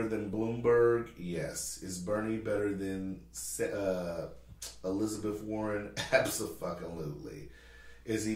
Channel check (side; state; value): both; identical; correlation 1.00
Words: than Bloomberg? Yes. Is Bernie better than Elizabeth Warren? Absolutely. Is he